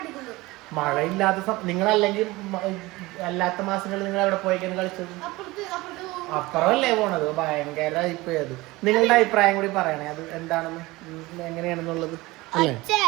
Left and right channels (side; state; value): left; quieter; 20.8 dB